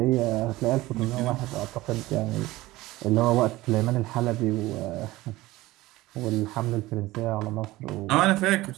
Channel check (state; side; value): quieter; left; 18.4 dB